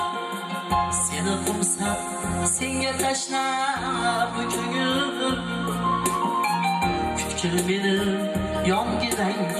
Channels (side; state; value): both; identical; correlation 1.00